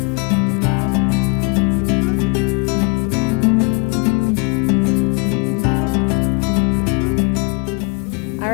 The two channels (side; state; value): right; quieter; 31.2 dB